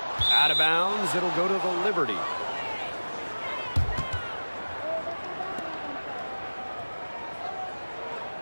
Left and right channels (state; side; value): inverted; both; correlation -1.00